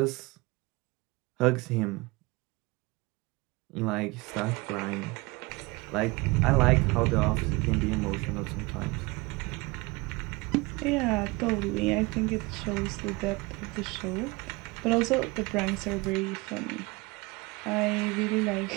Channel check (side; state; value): left; quieter; 24.7 dB